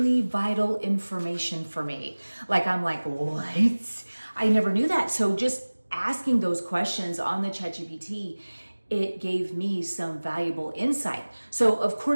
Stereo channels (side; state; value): both; inverted; correlation -1.00